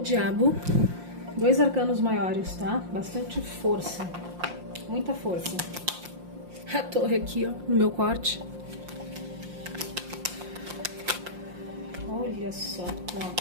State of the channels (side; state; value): left; late; 5.7 ms